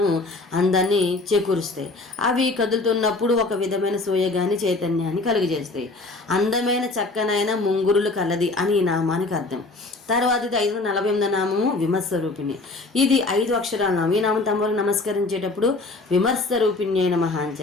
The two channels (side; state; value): right; quieter; 3.3 dB